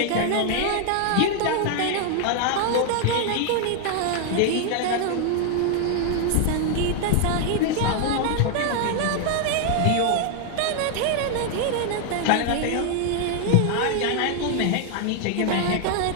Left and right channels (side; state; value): both; different; correlation 0.00